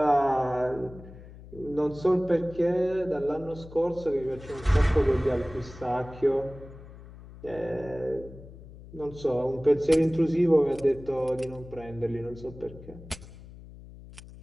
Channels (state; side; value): noise; left; hum, 17 dB below the sound